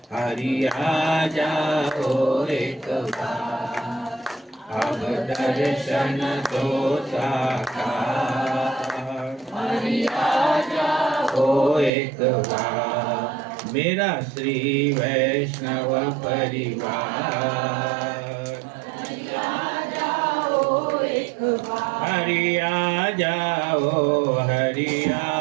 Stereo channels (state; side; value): drops out; left; at 11.9 s